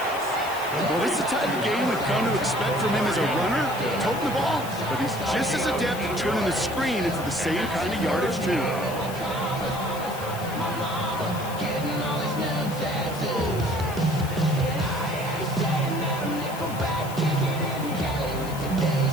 Well, this is the type of game we've come to expect from him as a runner, toting the ball, but he's just as adept at turning the screen into the same kind of yardage, too.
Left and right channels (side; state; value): left; noise; hiss, 15 dB below the sound